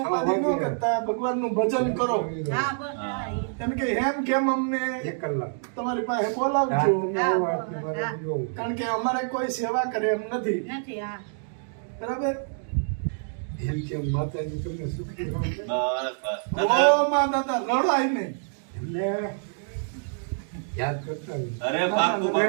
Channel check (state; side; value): silent; left; digital silence